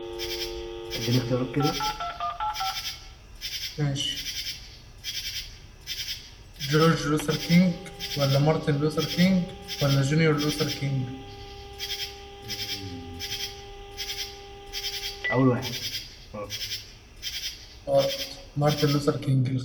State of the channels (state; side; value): identical; both; correlation 1.00